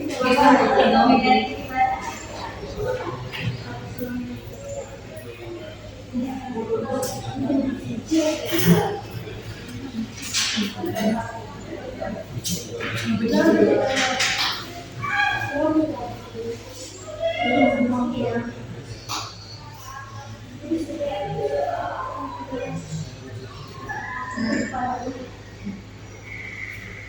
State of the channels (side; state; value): both; identical; correlation 1.00